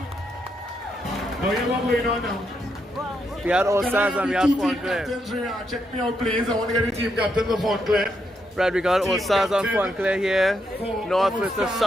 Oh, yeah, what going on now? We had Allstars and we had Fontclaire. Check me out, please. I want to get the team captains of Fontclaire. Right, we got Allstars on Fontclaire here. North versus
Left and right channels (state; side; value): normal; both; correlation 0.80